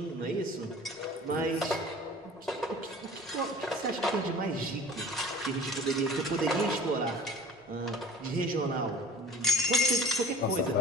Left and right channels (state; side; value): normal; both; correlation 0.46